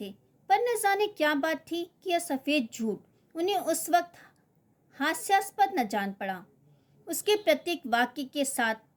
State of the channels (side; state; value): both; identical; correlation 1.00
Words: थे, पर न जाने क्या बात थी कि यह सफ़ेद झूठ उन्हें उस वक्त हास्यास्पद न जान पड़ा। उसके प्रत्येक वाक्य के साथ